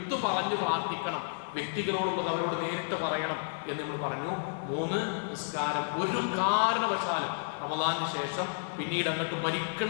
പറഞ്ഞു പ്രാർത്ഥിക്കണം, വ്യക്തികളോടുള്ളത് അവരോട് നേരിട്ട് പറയണം എന്ന് നമ്മൾ പറഞ്ഞു. 3, നിസ്കാരം ഒരു കാരണവശാലും റമദാനിന് ശേഷം പിന്നീട് അങ്ങോട്ട്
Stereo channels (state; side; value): silent; right; 57 dB below the other